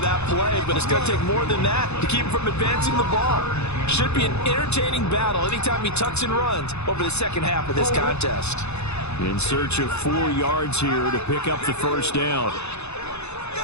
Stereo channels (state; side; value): late; right; 0.81 ms